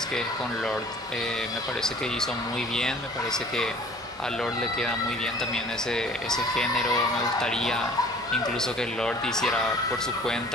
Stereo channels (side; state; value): both; normal; correlation 0.50